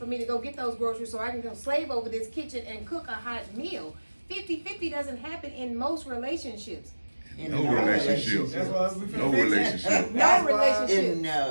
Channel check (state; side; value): inverted; both; correlation -1.00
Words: me to go get those groceries so I can go slave over this kitchen and cook a hot meal. 50-50 doesn't happen in most relationships. In No no relationship. That's why we No finna fix it. relationship. No That's why- relationship. In